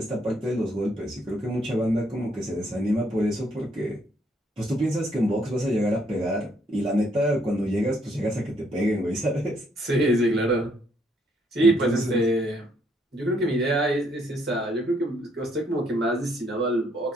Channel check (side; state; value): both; normal; correlation 0.70